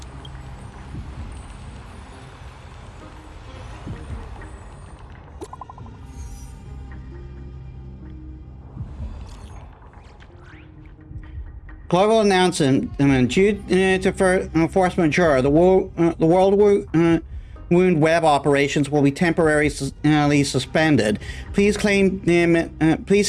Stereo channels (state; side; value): identical; both; correlation 1.00